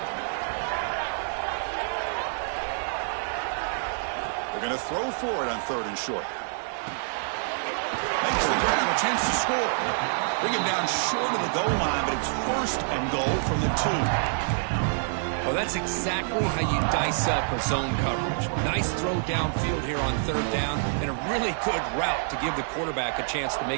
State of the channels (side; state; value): left; silent; digital silence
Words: They're going to throw for it on 3rd and short. Makes the grab, a chance to score. Bring him down short of the goal line, but it's 1st and goal from the 2. Well, that's exactly how you dice up a zone coverage. Nice throw downfield here on 3rd down, and a really good route to give the quarterback a chance to